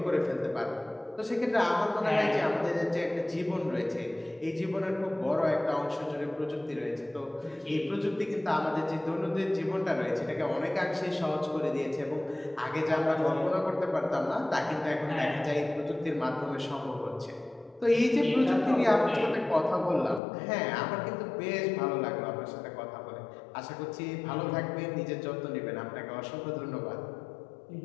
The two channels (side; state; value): right; drops out; at 20.2 s